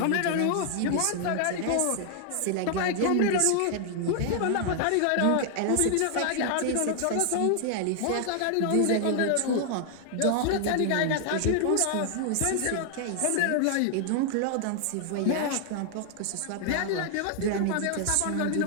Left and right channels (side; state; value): both; different; correlation 0.00